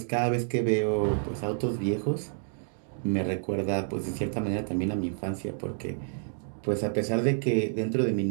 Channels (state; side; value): silent; left; 59 dB below the other